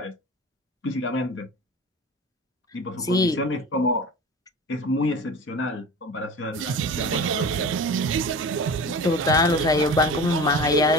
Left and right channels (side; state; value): both; normal; correlation 0.35